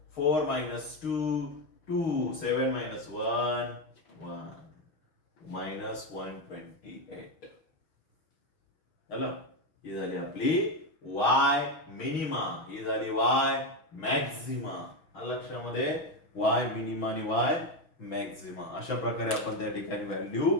4 मायनस 2 2 7 मायनस 1 1 मायनस 128. झालं. ही झाली आपली वाय मिनिमा. ही झाली वाय मॅक्झिमा. लक्षामध्ये वाय मिनिमा आणि वाय मॅक्झिमा अशा प्रकारे आपण त्या ठिकाणी व्हॅल्यू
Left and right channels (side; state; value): right; late; 6.1 ms